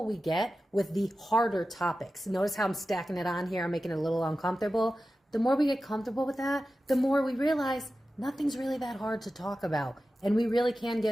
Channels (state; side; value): normal; both; correlation 0.94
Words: we get with the harder topics, notice how I'm stacking it on here, I'm making it a little uncomfortable. The more we get comfortable with that, the more we realize nothing's really that hard to talk about. And we really can